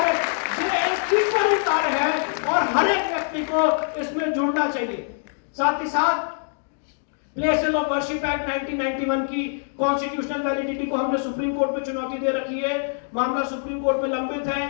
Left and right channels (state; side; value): silent; right; digital silence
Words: ये एक ईश्वरीय कार्य है और हर एक व्यक्ति को इसमें जुड़ना चाहिए। साथ ही साथ प्लेसेस ऑफ वर्शिप एक्ट 1991 की कॉन्स्टिट्यूशनल वैलिडिटी को हमने सुप्रीम कोर्ट में चुनौती दे रखी है, मामला सुप्रीम कोर्ट में लंबित